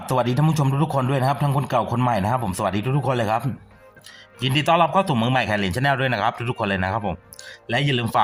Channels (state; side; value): identical; both; correlation 1.00